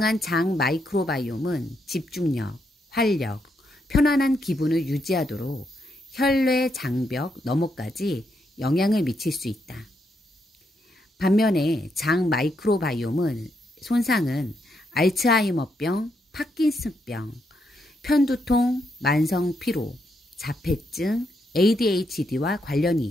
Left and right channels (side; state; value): both; normal; correlation 0.79